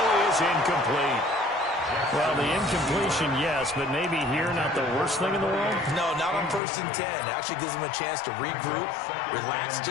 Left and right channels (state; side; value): drops out; right; at 6.6 s